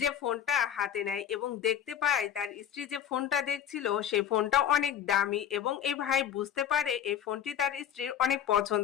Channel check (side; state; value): right; quieter; 9.6 dB